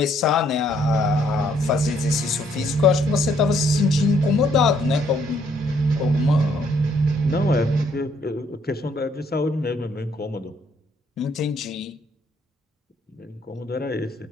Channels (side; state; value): both; normal; correlation 0.68